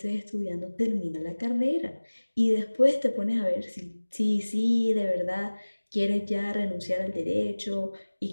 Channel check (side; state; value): both; inverted; correlation -1.00